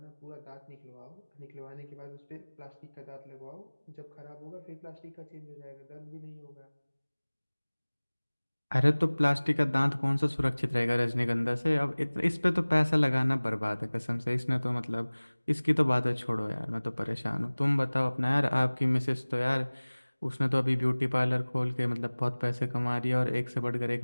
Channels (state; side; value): inverted; both; correlation -1.00